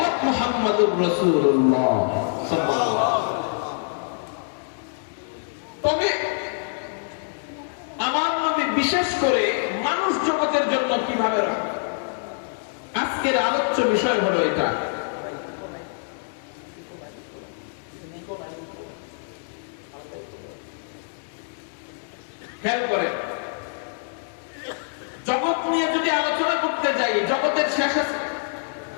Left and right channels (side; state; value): right; silent; digital silence